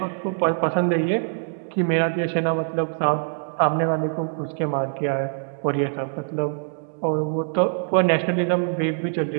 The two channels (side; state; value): left; silent; digital silence